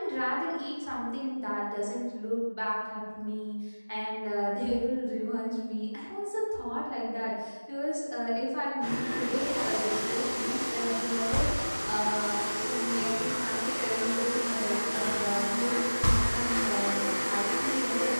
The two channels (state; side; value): inverted; both; correlation -1.00